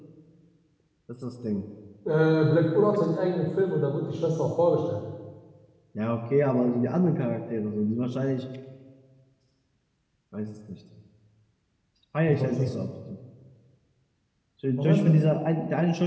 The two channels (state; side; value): identical; both; correlation 1.00